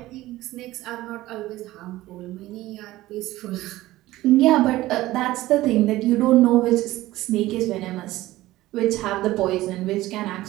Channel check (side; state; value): left; quieter; 16.8 dB